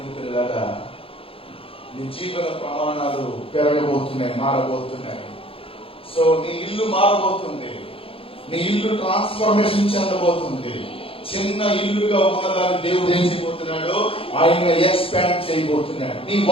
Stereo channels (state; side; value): late; right; 0.27 ms